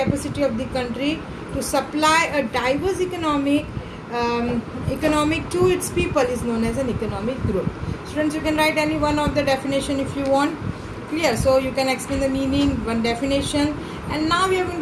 of the country to supply a diverse economic to its people is known as an economic growth. Students, you can write any one of the definition if you want. Clear? So you can explain the meaning, one definition, and now we are going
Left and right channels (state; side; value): identical; both; correlation 1.00